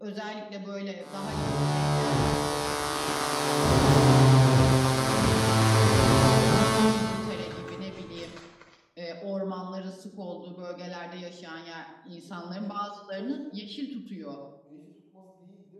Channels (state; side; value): identical; both; correlation 1.00